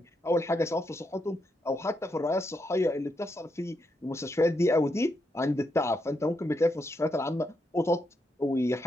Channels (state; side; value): normal; both; correlation 0.81